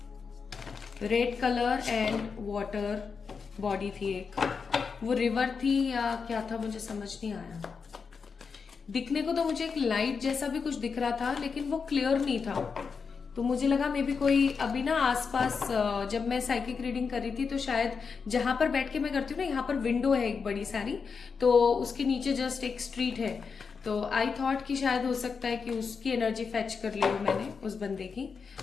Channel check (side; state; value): right; quieter; 5.5 dB